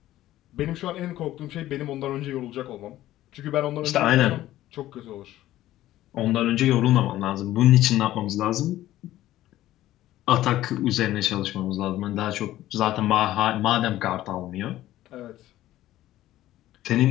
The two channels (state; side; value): quieter; right; 14.5 dB